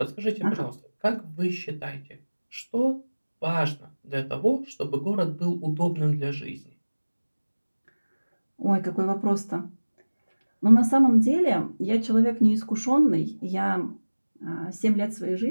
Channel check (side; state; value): both; inverted; correlation -1.00